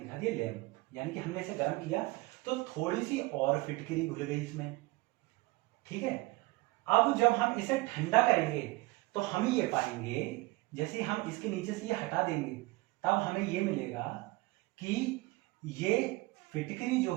दिया लैंप, यानी कि हमने इसे गर्म किया तो थोड़ी सी और फिटकरी घुल गई इसमें, ठीक है। अब जब हम इसे ठंडा करेंगे तो हम ये पाएंगे, जैसे हम इसके नीचे से ये हटा देंगे तब हमें ये मिलेगा कि ये फिटकरी जो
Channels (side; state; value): left; quieter; 21.9 dB